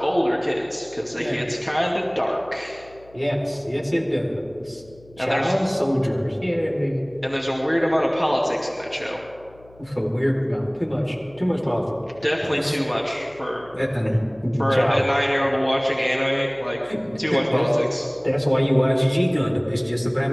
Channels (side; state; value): left; noise; hum, 25 dB below the sound